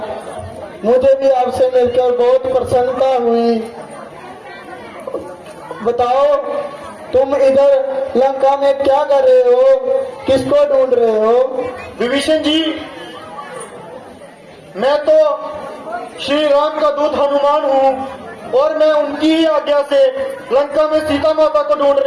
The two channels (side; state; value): both; identical; correlation 1.00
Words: मुझे भी आपसे मिलकर बहुत प्रसन्नता हुई। बताओ, तुम इधर लंका में क्या कर रहे हो? किसको ढूंढ रहे हो? विभीषण जी, मैं तो श्री राम का दूत हनुमान हूँ और मैं उनकी ही आज्ञा से लंका में सीता माता को